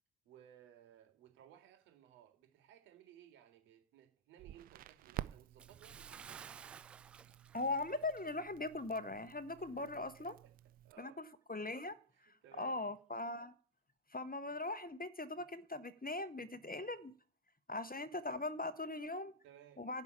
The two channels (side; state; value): both; normal; correlation -0.13